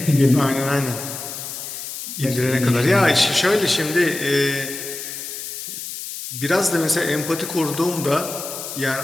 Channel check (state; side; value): noise; left; hiss, 8 dB below the sound